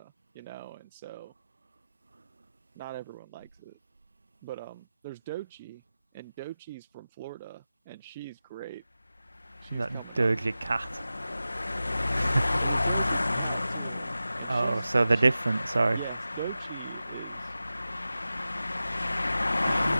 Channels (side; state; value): both; inverted; correlation -0.94